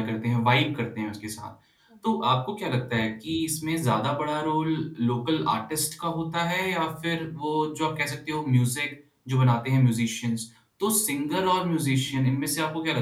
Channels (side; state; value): both; identical; correlation 1.00